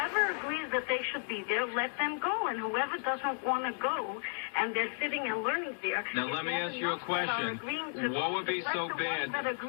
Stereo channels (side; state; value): right; silent; 55 dB below the other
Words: agrees that they should be there, let them go. And whoever doesn't want to go, and they're sitting and learning there. Now, let me ask you a question. What would be so bad? That